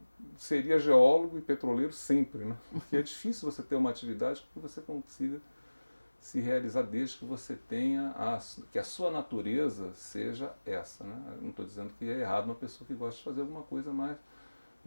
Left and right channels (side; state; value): both; inverted; correlation -1.00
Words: seria geólogo e petroleiro sempre, né? Porque é difícil você ter uma atividade que você consiga se realizar desde que você tenha que a sua natureza seja essa, né? Eu não estou dizendo que é errado uma pessoa que gosta de fazer alguma coisa mais